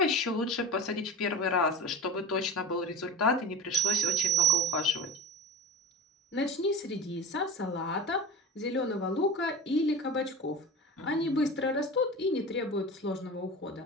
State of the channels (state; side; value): normal; both; correlation 0.31